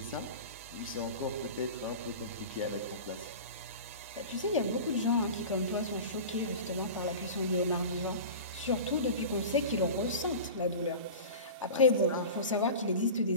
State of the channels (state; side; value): inverted; both; correlation -0.33